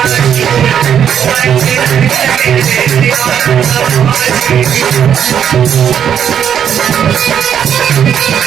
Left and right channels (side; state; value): left; quieter; 8.8 dB